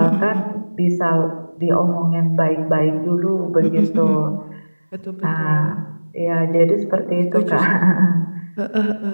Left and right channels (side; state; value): both; inverted; correlation -1.00